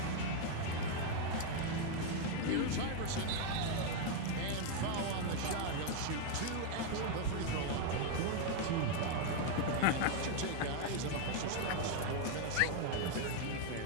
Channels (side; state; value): both; different; correlation 0.00